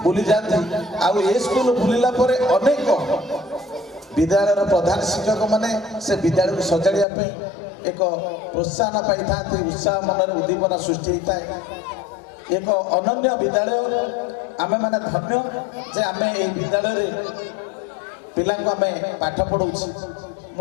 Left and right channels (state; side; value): drops out; right; at 7.1 s